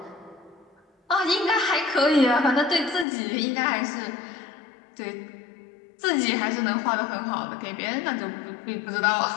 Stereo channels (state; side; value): drops out; right; at 3.1 s